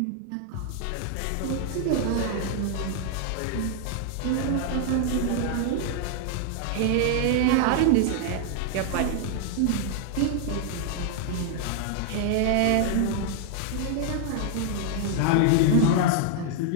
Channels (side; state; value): both; different; correlation 0.00